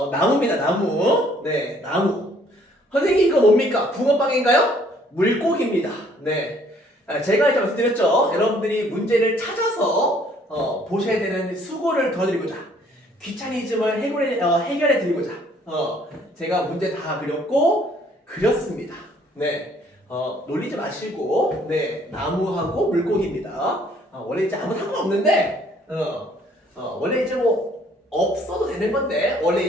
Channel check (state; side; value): normal; both; correlation 0.61